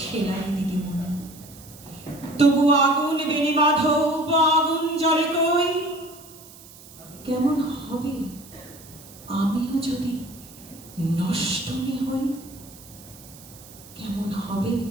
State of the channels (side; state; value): right; noise; hiss, 20 dB below the sound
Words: দিদিমণি। তবু আগুন বেনি মাধব, আগুন জ্বলে কই। কেমন হবে আমিও যদি নষ্ট হই? কেমন হবে